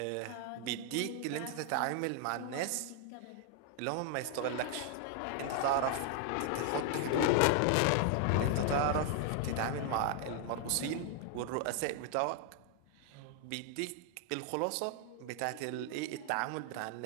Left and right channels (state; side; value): different; both; correlation 0.00